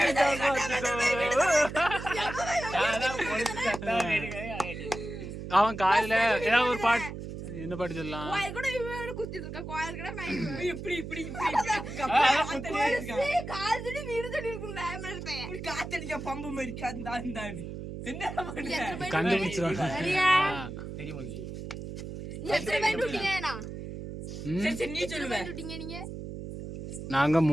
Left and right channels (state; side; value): noise; right; hum, 8 dB below the sound